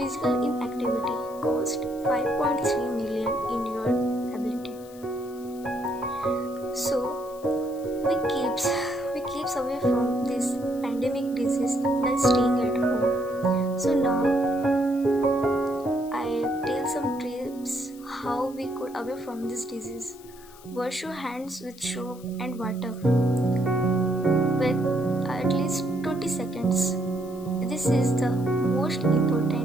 inactivity cost 5.3 million in your ability. So we keeps away from this pandemic disease by staying at home. So now I tell some tips how we could away from this disease. Wash your hands with soap and water with at least 20 seconds. This is the most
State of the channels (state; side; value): noise; left; hiss, 23 dB below the sound